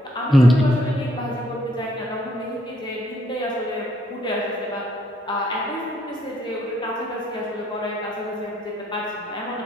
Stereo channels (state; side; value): normal; both; correlation 0.68